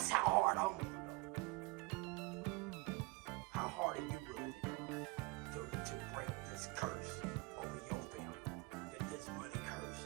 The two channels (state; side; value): quieter; left; 25.1 dB